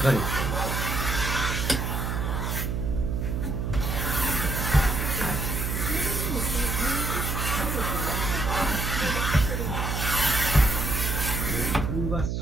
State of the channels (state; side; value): noise; right; hum, 1 dB below the sound